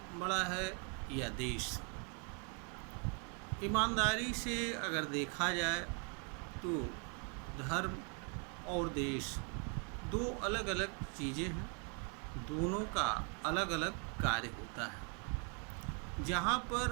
बड़ा है या देश। ईमानदारी से अगर देखा जाए तो धर्म और देश दो अलग अलग चीज़ें हैं, दोनों का अलग अलग कार्य होता है। जहाँ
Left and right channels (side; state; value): left; quieter; 38.5 dB